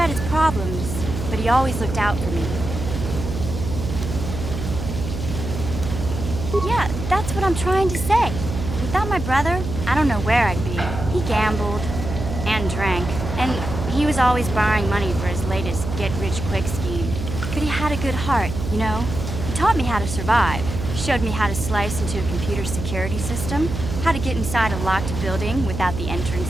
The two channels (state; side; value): noise; right; hum, 6 dB below the sound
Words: his problems, but he always looked out for me. Yeah, that's what I'm trying to say. Without my brother, I don't know where I'd be. He gambled and drank, and he was always borrowing money for his latest get-rich-quick scheme. But he had a good heart, you know? He taught me how to survive. Showed me how to slice into a computer security system, how to get inside a locked building without the